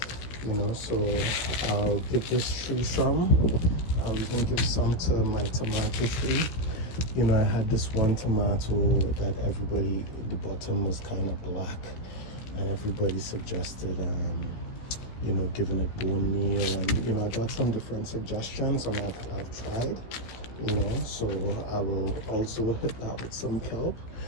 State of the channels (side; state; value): right; late; 16 ms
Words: So I'll give this tree some. I'll even give some to my tomato tree. I had this one tomato that the bottom was kind of black, and everybody suggested giving it bone meal, and I got some different suggestions, and I've tried, so I will also hit that with some kelp.